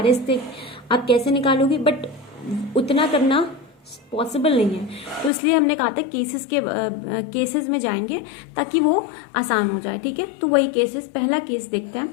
से आप कैसे निकालोगे, बट उतना करना पॉसिबल नहीं है। तो इसलिए हमने कहा था केसेस में जाएंगे ताकि वो आसान हो जाए। ठीक है, तो वही केसेस, पहला केस देखते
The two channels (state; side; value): drops out; right; at 5.3 s